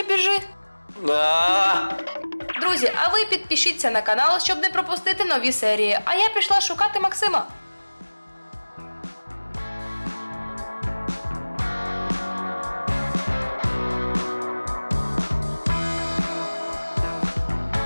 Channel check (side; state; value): both; inverted; correlation -1.00